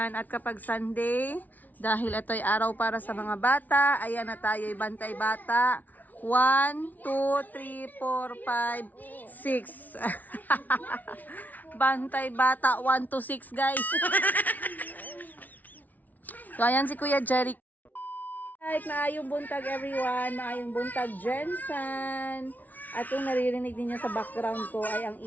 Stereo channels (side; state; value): right; late; 0.078 ms